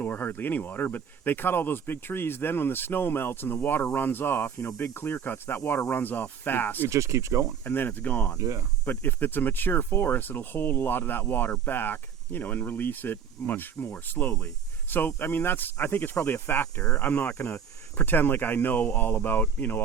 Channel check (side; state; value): left; quieter; 7.4 dB